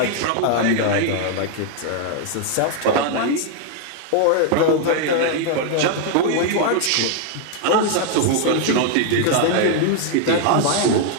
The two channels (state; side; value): different; both; correlation 0.00